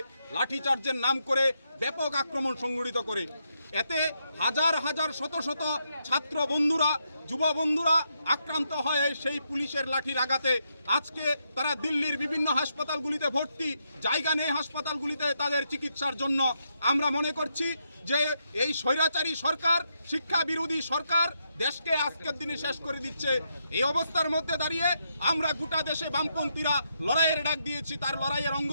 লাঠিচার্জের নাম করে ব্যাপক আক্রমণ সংগঠিত করে। এতে হাজার হাজার শত শত ছাত্র বন্ধুরা, যুব বন্ধুরা আক্রান্ত হয়ে সেই পুলিশের লাঠির আঘাতে আজকে তারা দিল্লির বিভিন্ন হাসপাতালগুলিতে ভর্তি, জায়গা নেই হাসপাতালগুলিতে তাদের চিকিৎসার জন্য। আমরা মনে করছি যে এই স্বৈরাচারী সরকার, শিক্ষা বিরোধী সরকার দেশকে আজকের দিনে শেষ করে দিচ্ছে। এই অবস্থার মধ্যে দাঁড়িয়ে আমরা গোটা দেশে বামপন্থীরা লড়াইয়ের ডাক দিয়েছি। তার লড়াইয়ের অঙ্গ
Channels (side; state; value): both; inverted; correlation -0.80